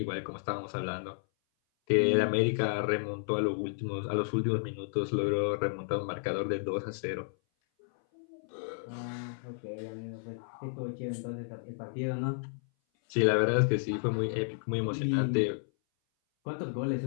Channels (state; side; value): silent; right; 56 dB below the other